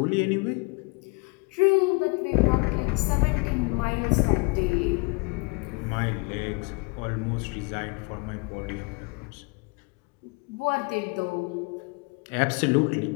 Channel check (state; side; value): quieter; right; 28.1 dB